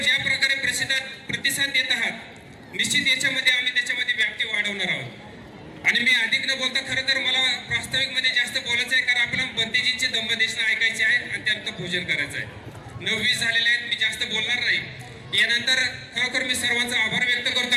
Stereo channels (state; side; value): identical; both; correlation 1.00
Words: ज्या प्रकारे प्रतिसाद देत आहात निश्चित याच्यामध्ये आम्ही त्याच्यामध्ये व्याप्ती वाढवणार आहोत. आणि मी अधिक न बोलता खरं तर मला प्रास्ताविकमध्ये जास्त बोलायचं आहे कारण आपल्याला बंतेजींचे दंबदेशना ऐकायचे आहे आणि त्यानंतर भोजन करायचं आहे. 9:20 झालेले आहेत, मी जास्त बोलणार नाही. यानंतर खरोखर मी सर्वांचा आभार व्यक्त करतो.